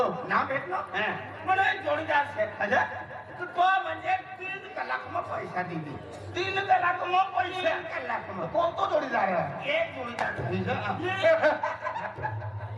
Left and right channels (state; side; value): identical; both; correlation 1.00